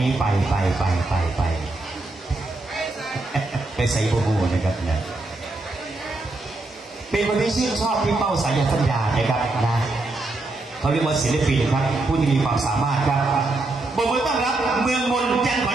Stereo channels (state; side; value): quieter; left; 3.0 dB